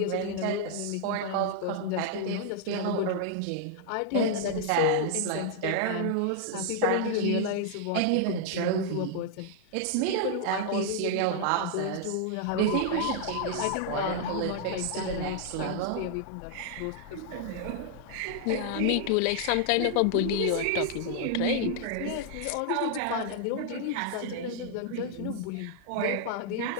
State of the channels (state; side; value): different; both; correlation 0.00